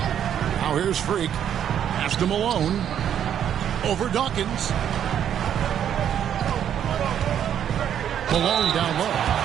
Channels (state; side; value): quieter; left; 9.5 dB